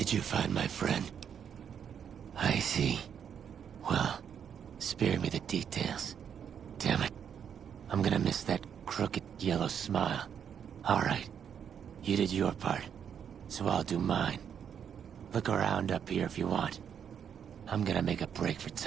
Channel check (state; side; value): quieter; left; 8.0 dB